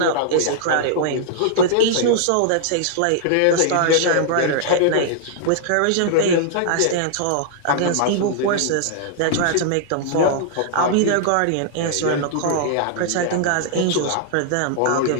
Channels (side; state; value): both; different; correlation -0.01